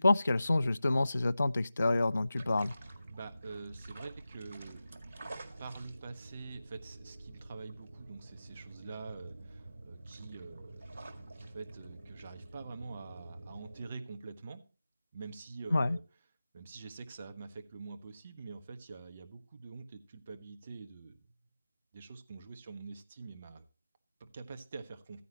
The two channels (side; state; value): both; inverted; correlation -0.94